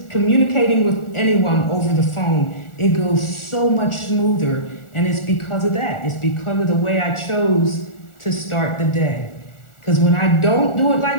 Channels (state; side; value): late; right; 1.4 ms